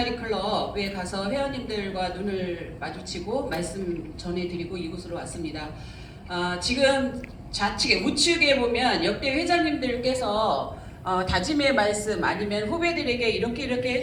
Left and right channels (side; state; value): both; identical; correlation 1.00